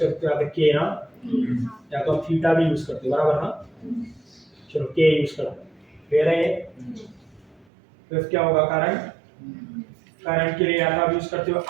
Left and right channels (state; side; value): drops out; left; at 7.7 s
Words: हो? यहाँ पे के ना, या तो आप थीटा भी यूज करते हो, बराबर ना? चलो के यूज करते हैं. फिर है फिर क्या होगा? करंट. करंट के लिए या तो आप यूज करते हो